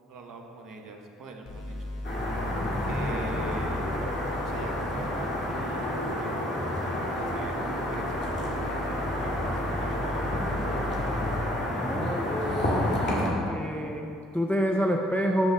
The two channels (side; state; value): both; normal; correlation 0.63